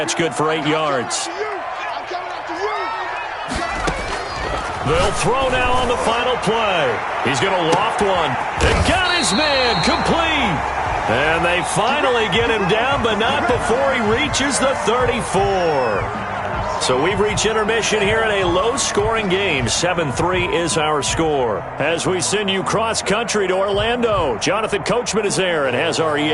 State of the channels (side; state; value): both; identical; correlation 1.00